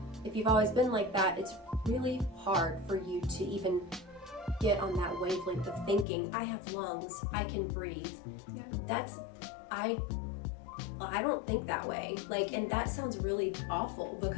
If you've always been like that, it's really hard for you to even get on that wavelength of thinking, I have lungs, I can breathe. Yeah. That's, I don't think that way. Like, and that sounds really awful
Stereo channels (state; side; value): drops out; right; at 6.1 s